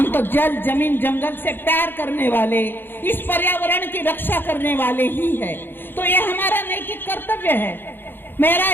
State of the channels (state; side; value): late; right; 0.099 ms